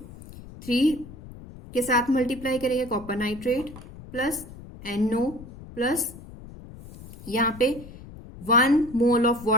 3 के साथ मल्टीप्लाई करेंगे copper nitrate plus NO plus यहाँ पे 1 mole of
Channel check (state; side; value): noise; left; rumble, 16 dB below the sound